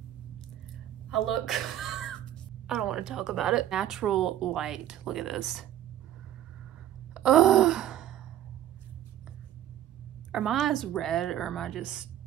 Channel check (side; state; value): left; quieter; 11.9 dB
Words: I look, I don't want to talk about it. Natural light, look at this. Ugh. Are my eyes red or am I just,